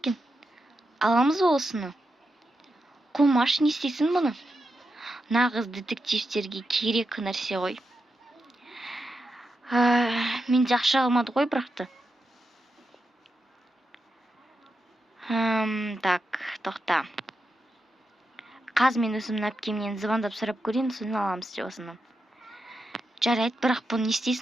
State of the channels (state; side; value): normal; both; correlation 0.87